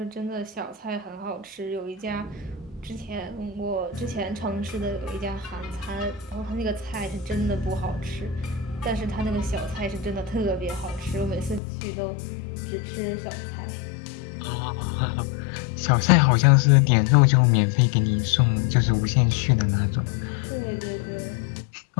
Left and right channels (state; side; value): drops out; right; at 11.6 s